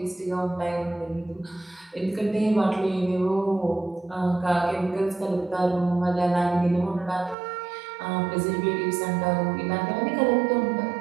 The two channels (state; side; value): drops out; left; at 7.4 s